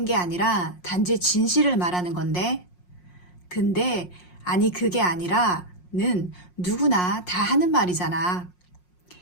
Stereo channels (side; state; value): right; late; 5.6 ms